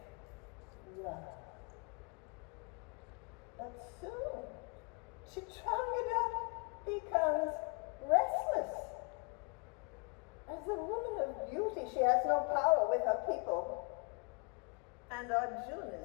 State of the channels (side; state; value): right; quieter; 32.9 dB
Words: love. But soon, Chitrangada becomes restless. As a woman of beauty, she has no power with her people. And Arjuna